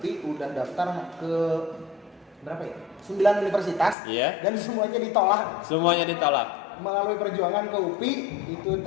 udah daftar ke berapa ya? 9 universitas. Iya. Dan semuanya ditolak. Semuanya ditolak. Melalui perjuangan ke UPI, itu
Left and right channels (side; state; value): right; drops out; at 4.0 s